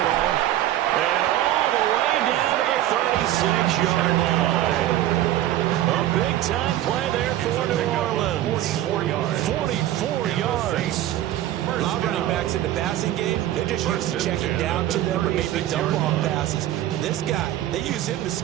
at all? And all the way down to the 36-yard line. A big-time play there for New Orleans. 44 yards. A lot of running backs in the passing game, they're just used to checking down to them or maybe dump-off passes. This guy, they use him to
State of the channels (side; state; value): left; quieter; 13.4 dB